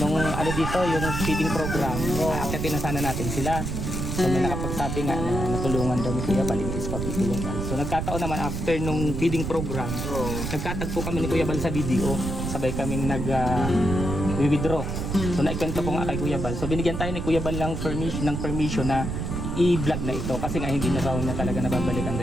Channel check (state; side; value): noise; right; rumble, 3 dB below the sound